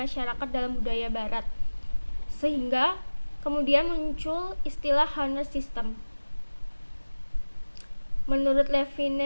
dalam budaya barat. Sehingga kemudian muncul istilah honor system. Menurut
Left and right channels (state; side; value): inverted; both; correlation -1.00